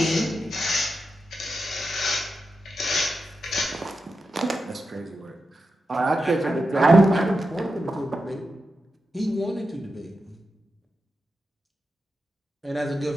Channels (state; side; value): normal; both; correlation 0.89